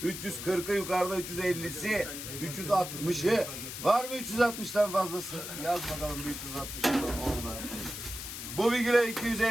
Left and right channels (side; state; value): left; noise; hiss, 8 dB below the sound